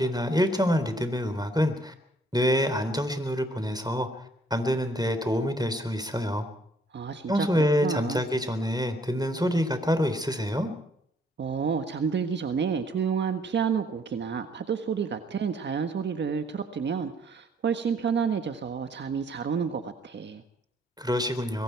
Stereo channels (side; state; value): both; normal; correlation 0.65